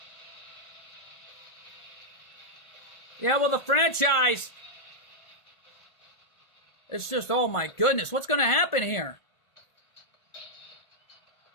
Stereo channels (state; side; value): late; right; 1.5 ms